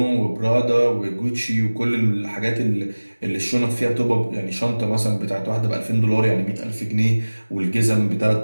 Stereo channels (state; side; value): inverted; both; correlation -1.00